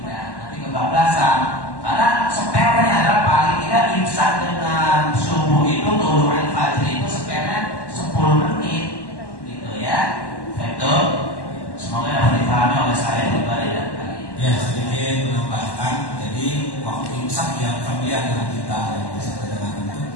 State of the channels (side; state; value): right; late; 1.1 ms